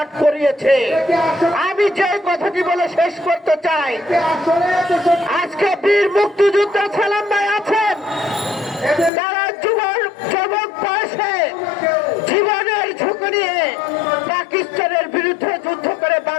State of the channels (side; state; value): right; drops out; at 9.1 s